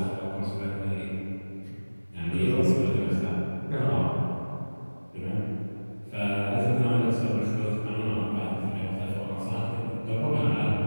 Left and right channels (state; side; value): inverted; both; correlation -1.00